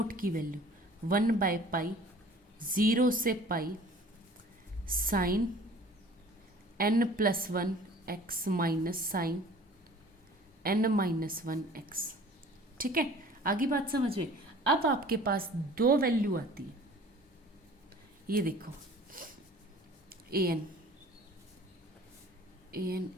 की वैल्यू 1/पाई 0 से pi sine n+1 x minus sine n-1 x, ठीक है। आगे बात समझ में। अब आपके पास दो वैल्यू आती है, ये देखो, ए एन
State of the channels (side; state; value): both; normal; correlation 0.47